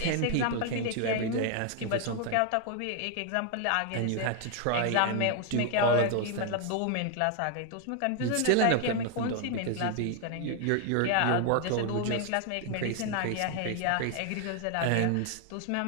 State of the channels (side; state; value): both; different; correlation 0.00